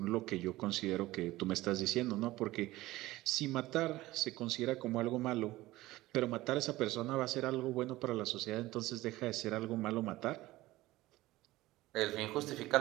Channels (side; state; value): left; quieter; 17.8 dB